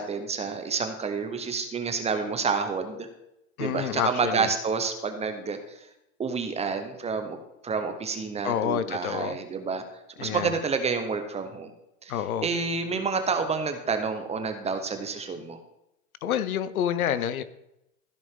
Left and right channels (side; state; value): both; normal; correlation 0.16